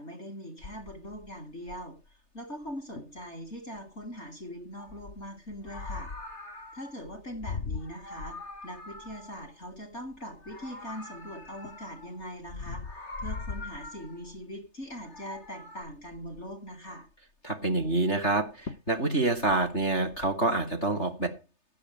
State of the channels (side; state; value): right; late; 3.3 ms